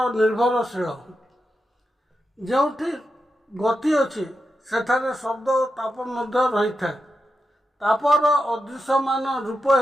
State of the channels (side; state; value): both; normal; correlation 0.88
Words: निर्भरशील। जोठी गति अच्छी सेठारे शब्द और ताप मध्य रही था। तापर अदृश्यमान रूप